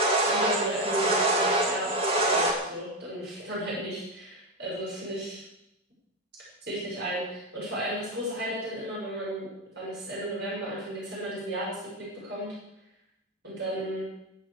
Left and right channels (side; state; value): both; normal; correlation 0.10